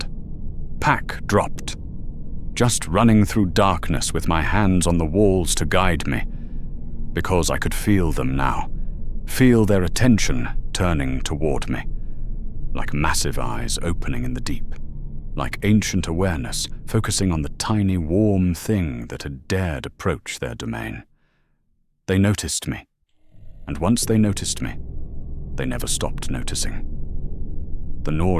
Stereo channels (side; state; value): both; identical; correlation 1.00